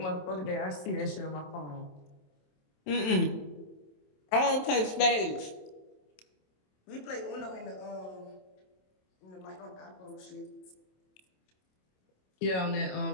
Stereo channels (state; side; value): late; right; 27 ms